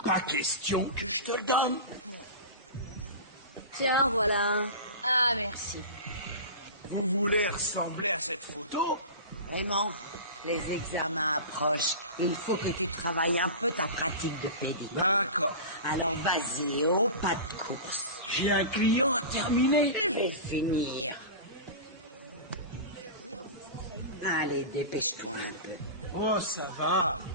pas question que je te le donne. Tiens, voilà. Ah, merci. Vous voulez ressembler à cette photo? Vraiment, les examens approchent. Il faut que tu travailles un peu ta pratique de pédicure. D'accord. Alors vas-y, au pas de course. J'ai un client à terminer. Je vais le finir. Allez, dépêche-toi un peu. Oh, ça va.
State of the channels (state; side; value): inverted; both; correlation -0.30